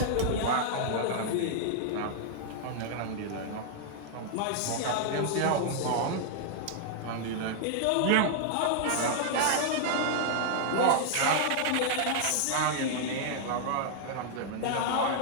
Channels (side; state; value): both; different; correlation -0.01